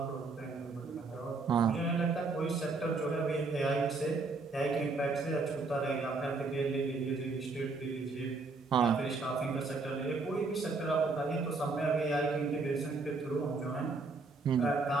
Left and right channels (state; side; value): quieter; left; 3.8 dB